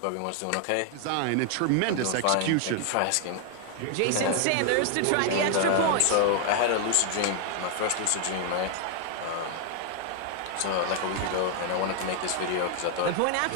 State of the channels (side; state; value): both; different; correlation 0.00